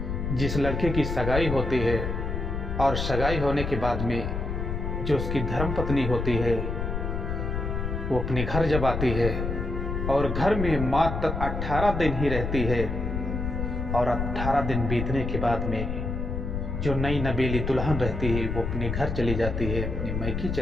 जिस लड़के की सगाई होती है और सगाई होने के बाद में जो उसकी धर्मपत्नी होती है, वो अपने घर जब आती है और घर में मात्र 18 दिन ही रहती है, और 18 दिन बीतने के बाद में जो नई नवेली दुल्हन रहती है वो अपने घर चली जाती है, अपने मैके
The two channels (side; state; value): left; noise; rumble, 3 dB below the sound